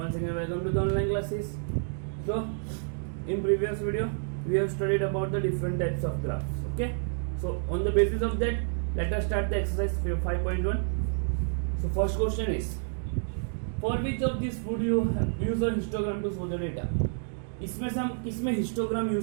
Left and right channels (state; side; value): silent; left; digital silence